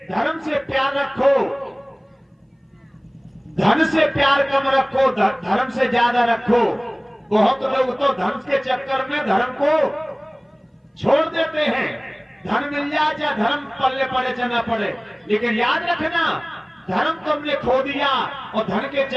धर्म से प्यार रखो, धन से प्यार कम रखो, धर्म से ज्यादा रखो। बहुत लोग तो धर्म के चक्कर में धर्म को छोड़ देते हैं। धन मिल जाए चाहे धर्म पल्ले पड़े चाहे ना पड़े, लेकिन याद रखना, धर्म तुमने खो दिया और धन के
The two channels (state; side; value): identical; both; correlation 1.00